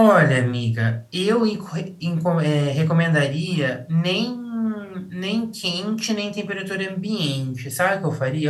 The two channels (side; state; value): both; identical; correlation 1.00